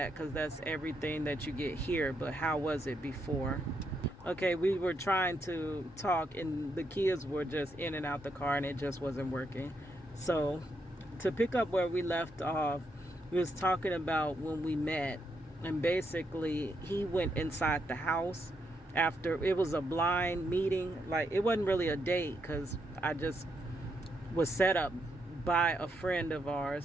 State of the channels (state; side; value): normal; both; correlation 0.79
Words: because that's everything that you get here. But how was it before? Okay, we were trying to talk, and the kids were just in and out the car, and it just wasn't working. So, to pick up where we left off, we was talking about when we met, and basically, he went inside the house after it was a blind meeting. Like, it wasn't really a date, because I just was set up by a friend of